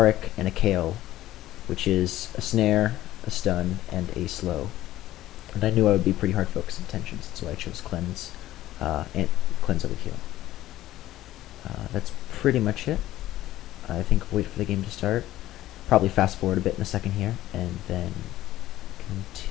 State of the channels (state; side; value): quieter; right; 14.7 dB